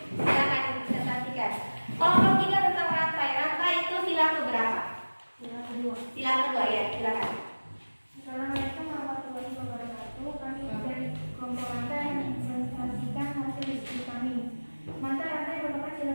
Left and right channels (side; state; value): both; inverted; correlation -1.00